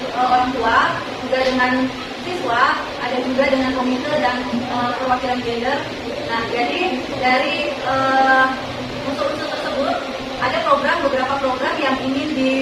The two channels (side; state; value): both; identical; correlation 1.00